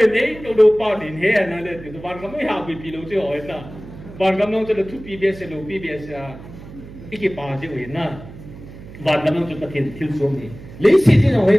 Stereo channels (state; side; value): noise; right; hum, 16 dB below the sound